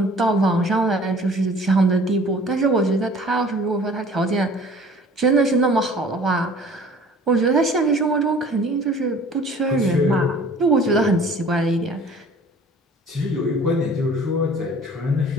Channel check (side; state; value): both; normal; correlation 0.49